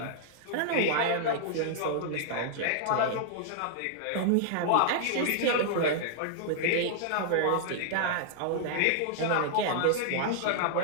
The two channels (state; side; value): different; both; correlation -0.01